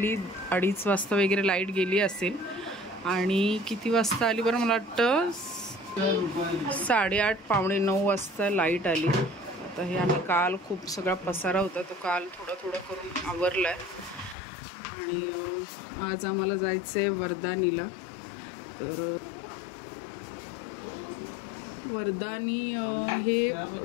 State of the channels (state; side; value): drops out; right; at 14.4 s